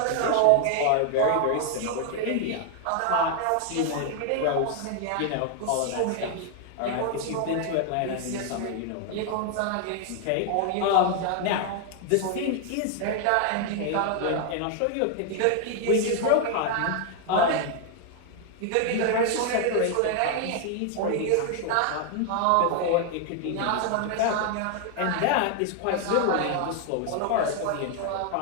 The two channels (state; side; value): different; both; correlation 0.00